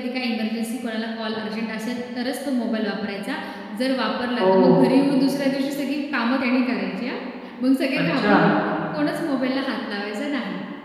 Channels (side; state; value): both; identical; correlation 1.00